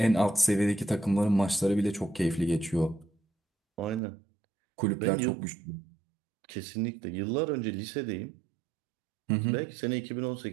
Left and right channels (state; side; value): drops out; left; at 4.0 s